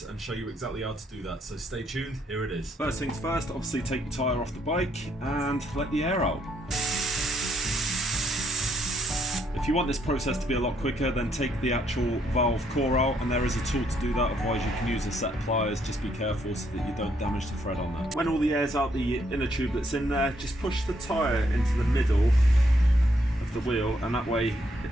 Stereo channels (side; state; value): both; normal; correlation 0.72